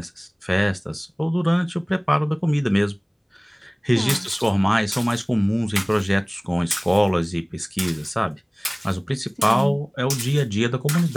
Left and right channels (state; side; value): identical; both; correlation 1.00